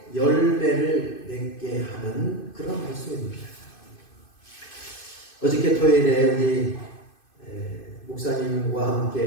열매를 맺게 하는 그런 말씀입니다. 어저께 토요일에 우리 목사님과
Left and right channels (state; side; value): late; right; 2.5 ms